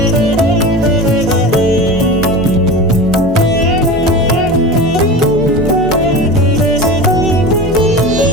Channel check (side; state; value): both; normal; correlation 0.30